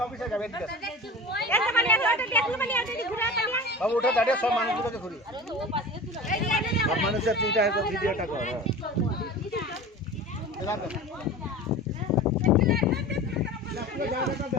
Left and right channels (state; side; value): normal; both; correlation 0.35